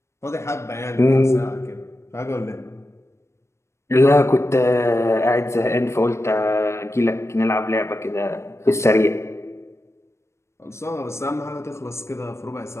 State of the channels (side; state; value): right; late; 0.13 ms